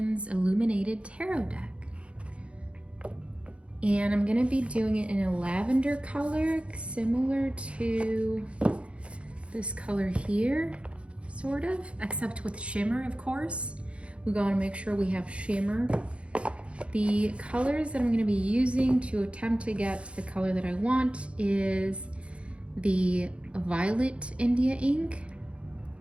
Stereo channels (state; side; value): late; left; 0.060 ms